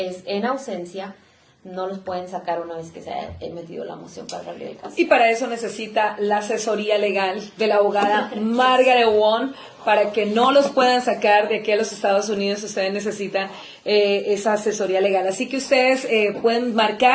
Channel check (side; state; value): both; identical; correlation 1.00